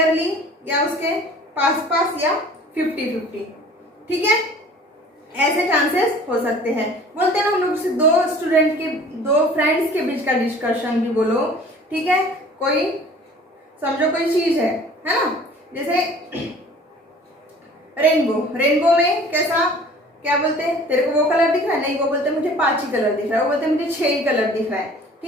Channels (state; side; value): normal; both; correlation 0.48